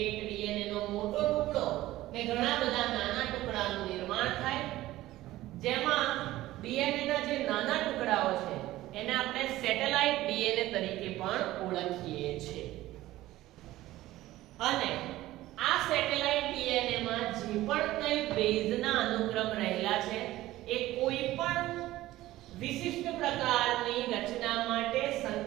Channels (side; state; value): left; quieter; 16.2 dB